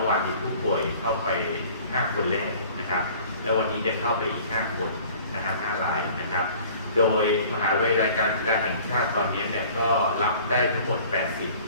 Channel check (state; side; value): inverted; both; correlation -0.49